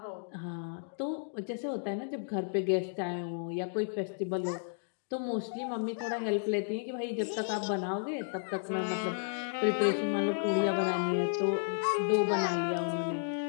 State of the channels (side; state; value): right; silent; digital silence